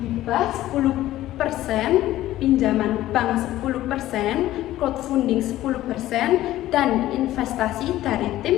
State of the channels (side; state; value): right; quieter; 14.7 dB